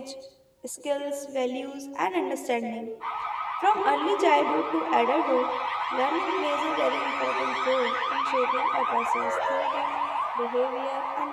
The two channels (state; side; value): identical; both; correlation 1.00